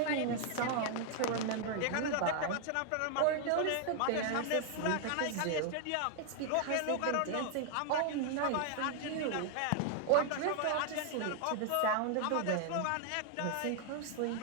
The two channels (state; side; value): different; both; correlation 0.00